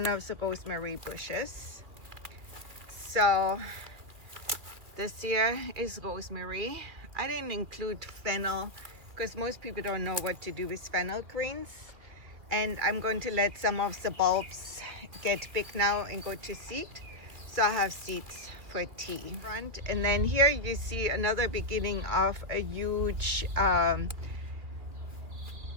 of the rosemary bushes. So this here is rosemary. I didn't include fennel because most people don't know what to do with fennel greens. And I'm going to let some of the bulbs get big now and go to seed. So I have seeds for tea. And then here you see another beginning of a huge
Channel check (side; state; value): left; late; 2.6 ms